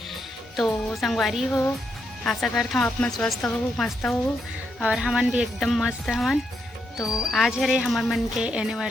तो संगवारी हो, आशा करता हूँ आप मन स्वस्थ हो, मस्त हो और हमन भी एकदम मस्त हवन। तो आज है रे हमर मन के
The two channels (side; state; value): both; normal; correlation 0.80